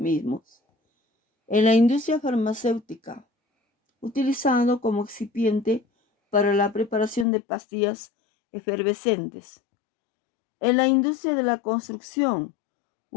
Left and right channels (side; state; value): right; drops out; at 7.2 s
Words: En la industria farmacéutica, utilizado como excipiente para la preparación de pastillas efervescentes. En la industria de la construcción,